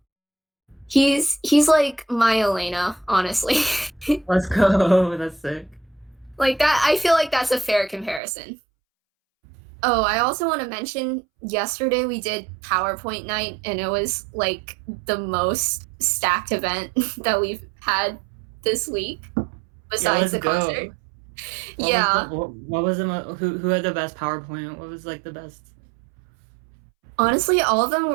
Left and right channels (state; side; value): drops out; left; at 8.2 s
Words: He's like my Elena, honestly. Let's go. That's sick. Like that, I feel like that's a fair comparison. Oh, I also want to mention yesterday we did PowerPoint night, and it was like the most stacked event that we've had this week besides the concert. What was who had the best PowerPoint? What was like the best? Honestly, all of them